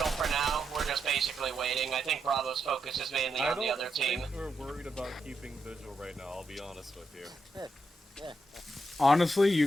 for now. We're just basically waiting. I think Bravo's focus is mainly on the other team. I don't think we're worried about keeping vigil right now, I'll be honest with you. Yeah. Honestly, you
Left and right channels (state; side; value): normal; both; correlation 0.83